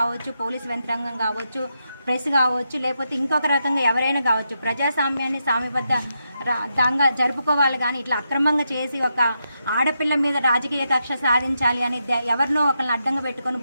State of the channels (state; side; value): inverted; both; correlation -0.84